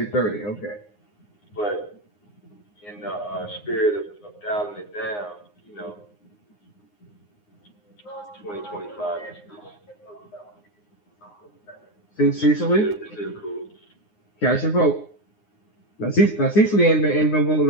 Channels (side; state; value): right; late; 9.7 ms